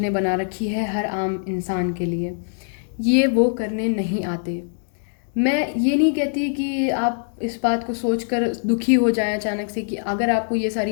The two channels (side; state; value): right; silent; digital silence